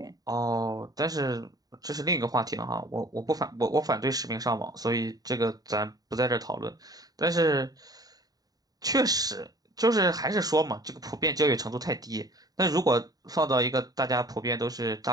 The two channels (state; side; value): late; left; 0.18 ms